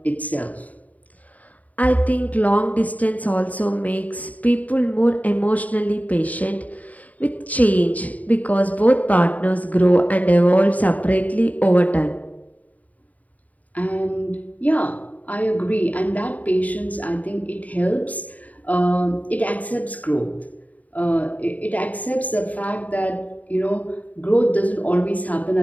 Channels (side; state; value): right; late; 0.073 ms